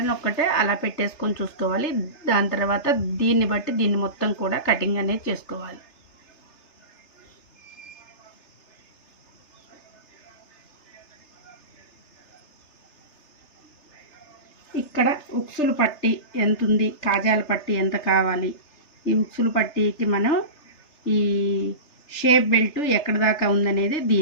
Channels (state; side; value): late; right; 3.3 ms